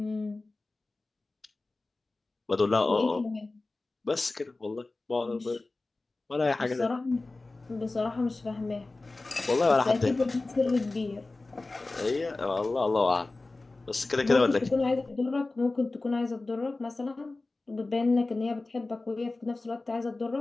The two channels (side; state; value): right; quieter; 3.3 dB